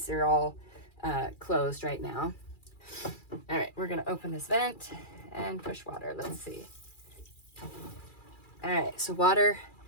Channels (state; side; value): late; right; 2.4 ms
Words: are all closed right now. All right, we're gonna open this vent and push water. Let's see. All right, so water